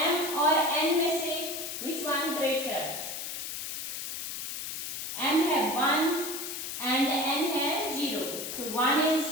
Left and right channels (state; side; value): noise; left; hiss, 5 dB below the sound